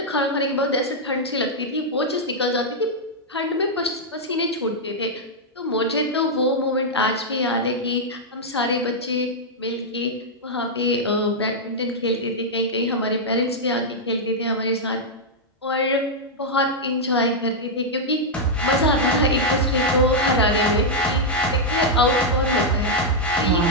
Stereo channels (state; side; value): normal; both; correlation -0.04